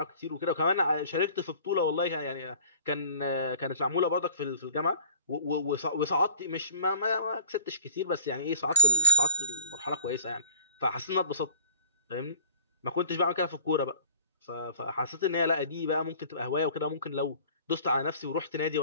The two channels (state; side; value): inverted; both; correlation -0.49